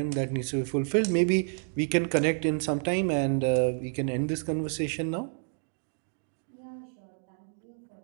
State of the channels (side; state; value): left; silent; digital silence